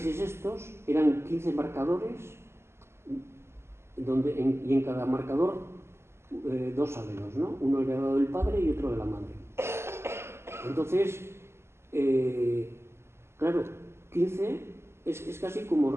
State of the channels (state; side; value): late; left; 0.12 ms